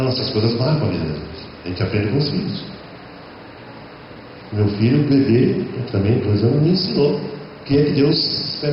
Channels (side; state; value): both; identical; correlation 1.00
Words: essas coisas marcam a vida da gente. A gente aprende com os filhos. Meu filho, bebê, também 2 anos, me ensinou o que é que Deus